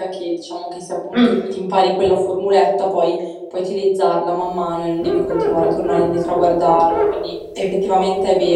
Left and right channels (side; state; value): both; identical; correlation 1.00